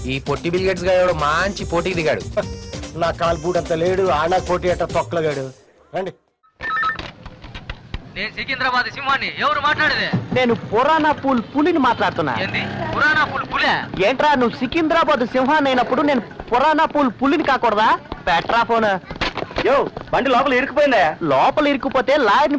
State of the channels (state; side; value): identical; both; correlation 1.00